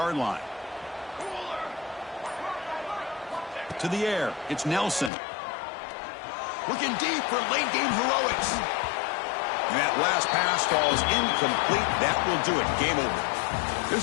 line. To the air, it's Nelson. Looking deep for late-game heroics. And that last pass falls incomplete. That will do it. Game over.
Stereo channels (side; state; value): right; drops out; at 5.1 s